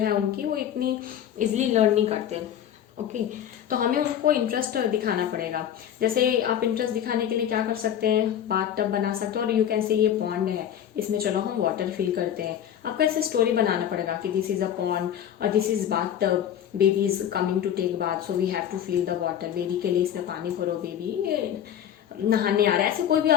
उनकी वो इतनी इजीली लर्न नहीं करते। ओके, तो हमें उनको इंटरेस्ट दिखाना पड़ेगा। जैसे आप इंटरेस्ट दिखाने के लिए क्या कर सकते हैं, बाथ टब बना सकते हो और यू कैन से ये पॉन्ड है, इसमें चलो हम वाटर फिल करते हैं। आपको ऐसे स्टोरी बनाना पड़ेगा कि दिस इज अ पॉन्ड और this is bathtub, baby is coming to take bath so we have to fill the water, baby के लिए इसमें पानी भरो, बेबी नहाने आ रहा है। ऐसे कोई भी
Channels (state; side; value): quieter; right; 10.0 dB